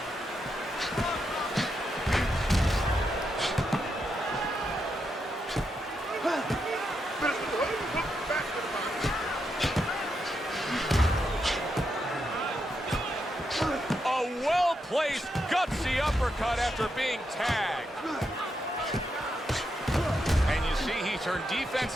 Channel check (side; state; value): both; normal; correlation 0.83